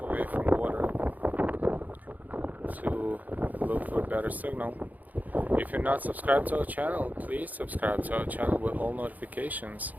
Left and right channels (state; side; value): late; left; 0.080 ms